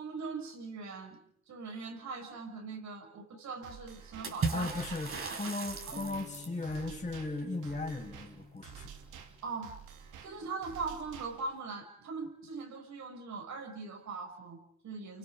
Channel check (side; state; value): both; normal; correlation 0.36